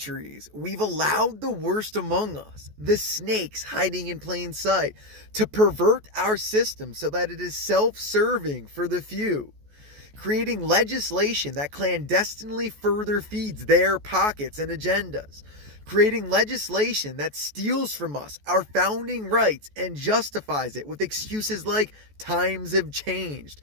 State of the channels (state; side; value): late; left; 14 ms